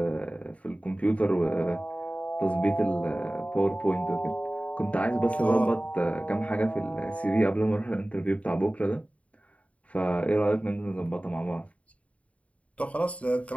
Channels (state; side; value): late; right; 0.066 ms